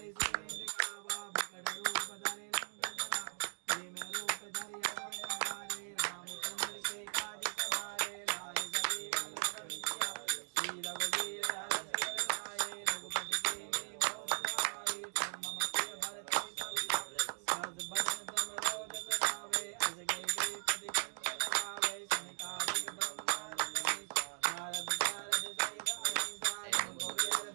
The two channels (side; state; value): left; silent; 52 dB below the other